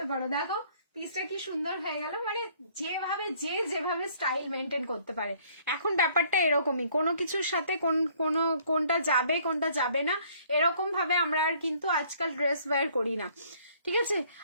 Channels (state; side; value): inverted; both; correlation -0.60